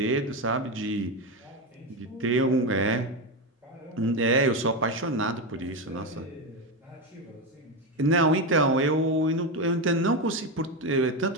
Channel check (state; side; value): normal; both; correlation 0.13